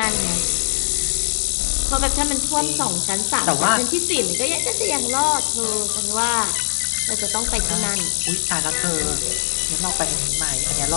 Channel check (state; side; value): silent; right; digital silence